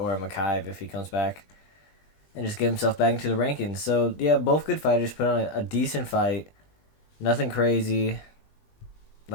Makaev if he comes back, and just get himself back into the rankings. So yeah, both good fighters put on a decent fight. Nothing crazy,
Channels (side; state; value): right; late; 20 ms